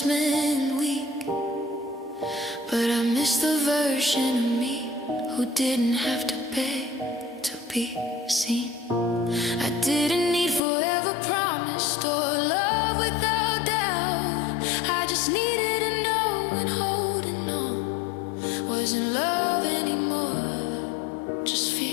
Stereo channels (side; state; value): right; drops out; at 10.6 s